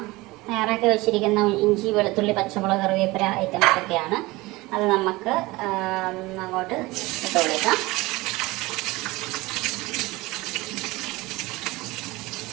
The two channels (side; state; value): left; quieter; 21.3 dB